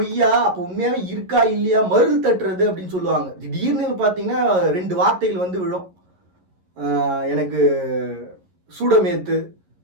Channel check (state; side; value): late; left; 11 ms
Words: அப்போ உண்மையாகவே இருக்கா இல்லையா, மருள் தட்டுறது அப்படின்னு சொல்லுவாங்க. திடீர்னு பார்த்தீங்கன்னா 2 வார்த்தைகள் வந்து விழும். எனக்கு சூடமேத்து,